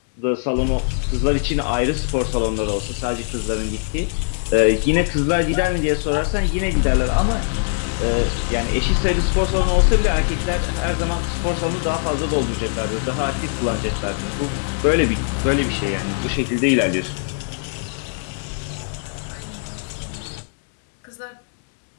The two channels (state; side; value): silent; right; digital silence